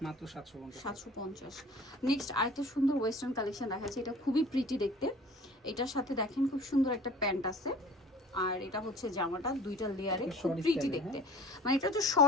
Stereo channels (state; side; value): normal; both; correlation 0.45